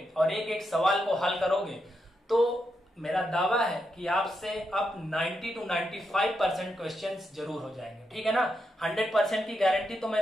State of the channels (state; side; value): normal; both; correlation 0.84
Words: और एक एक सवाल को हल करोगे, तो मेरा दावा है कि आपसे अब 90 to 95% क्वेश्चंस जरूर हो जाएंगे। ठीक है ना, 100% की गारंटी तो